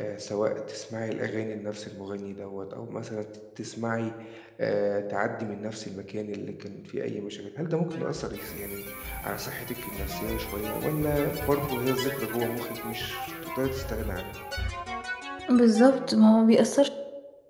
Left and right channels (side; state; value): both; identical; correlation 1.00